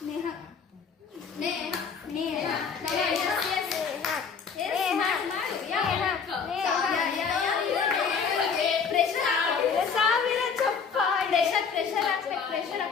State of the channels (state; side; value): quieter; right; 6.0 dB